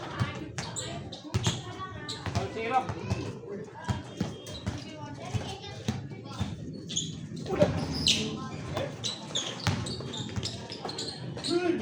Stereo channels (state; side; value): identical; both; correlation 1.00